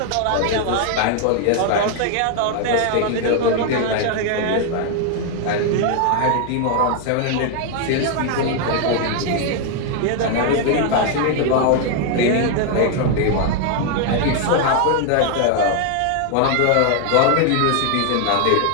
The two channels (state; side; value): different; both; correlation 0.00